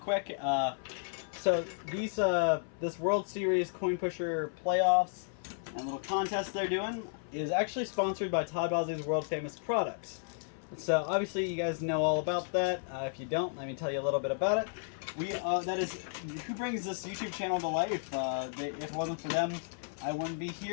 So these this World Series Coin Pusher playoffs and little contest they're doing is actually sponsored by Todd Bosley's world famous products. So obviously you guys know all about that. If you don't, let me tell you a little bit about it. That is who brings this YouTube channel to life. If it wasn't for them, I wouldn't be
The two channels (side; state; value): right; silent; 56 dB below the other